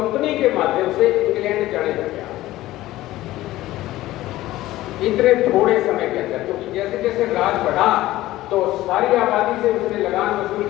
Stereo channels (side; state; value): right; quieter; 16.1 dB